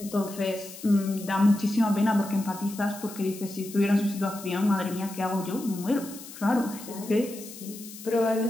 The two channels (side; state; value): left; noise; hiss, 15 dB below the sound